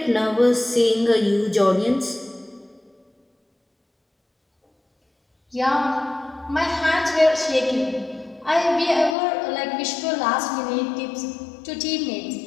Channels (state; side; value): drops out; right; at 9.2 s